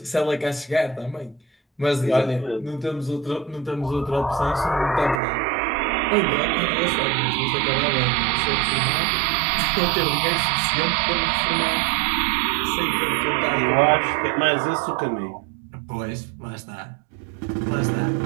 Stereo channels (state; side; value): drops out; left; at 5.2 s